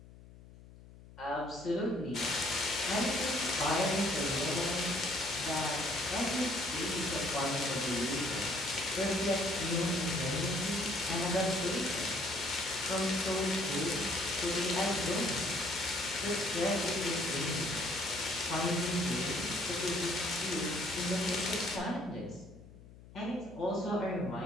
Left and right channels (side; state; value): left; noise; hum, 20 dB below the sound